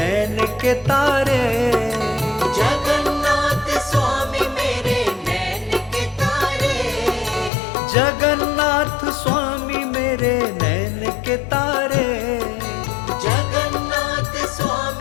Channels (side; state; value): right; drops out; at 7.5 s